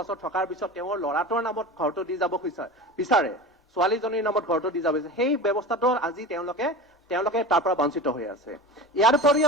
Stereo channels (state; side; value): normal; both; correlation 0.31